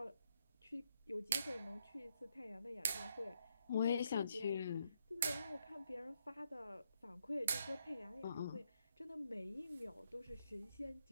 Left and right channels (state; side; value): inverted; both; correlation -0.77